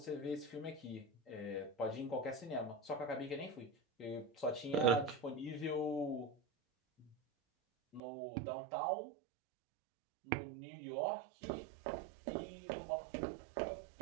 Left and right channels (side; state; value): left; drops out; at 8.0 s